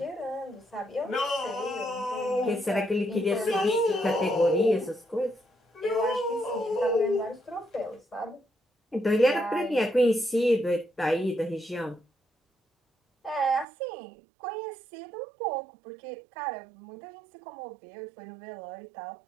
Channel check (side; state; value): left; drops out; at 13.7 s